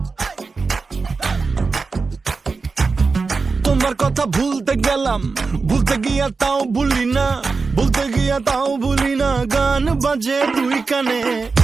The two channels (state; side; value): quieter; left; 4.4 dB